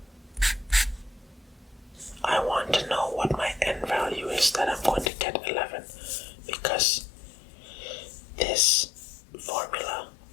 I want to know what my n value is that I'm going to get 11, because this formula,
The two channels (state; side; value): drops out; right; at 5.1 s